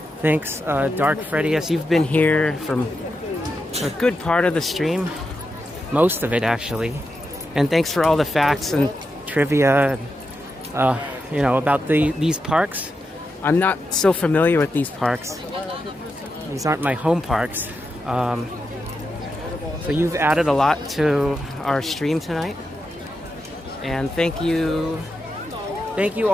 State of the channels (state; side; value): normal; both; correlation 0.87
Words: Thanks, Dark Freddy. You've been here from a good part of the stream, most of it actually. And thanks for all the facts and trivia, about these parks. I'm not so familiar with these parks. These aren't my home parks. So you've added a lot to our stream tonight. And thank you to